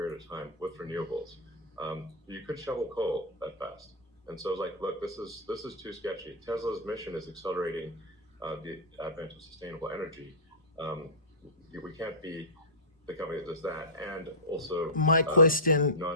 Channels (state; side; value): normal; both; correlation -0.15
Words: of time with renewables. You could shovel coal that fast. And so it's like, look, this is too sketchy. Tesla's mission is accelerating the advent of sustainable energy. We can't be the company that does that, and also my question